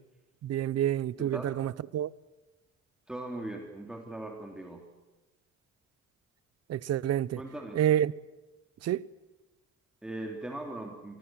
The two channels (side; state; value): left; quieter; 9.3 dB